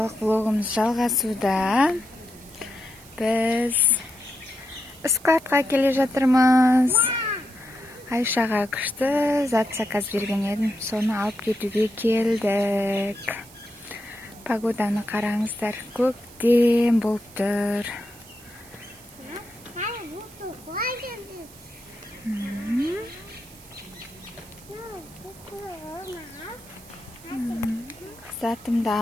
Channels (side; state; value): right; noise; hiss, 21 dB below the sound